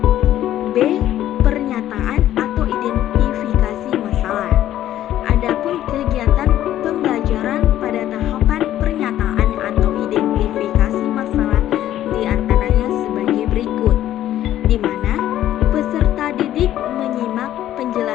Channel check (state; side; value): quieter; right; 12.6 dB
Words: B. Pernyataan atau identifikasi masalah. Adapun kegiatan pembelajaran pada tahapan pernyataan atau identifikasi masalah diantaranya sebagai berikut, di mana peserta didik menyimak